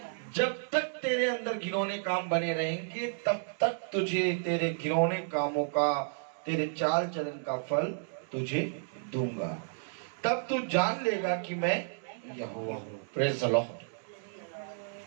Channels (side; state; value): left; silent; digital silence